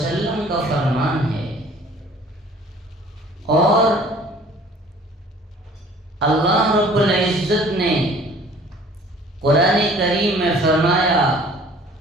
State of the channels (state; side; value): normal; both; correlation 0.52